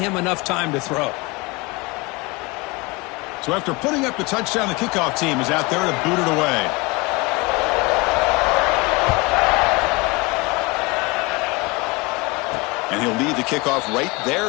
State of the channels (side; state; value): right; quieter; 25.3 dB